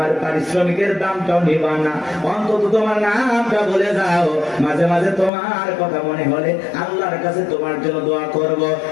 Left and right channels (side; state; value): right; drops out; at 5.3 s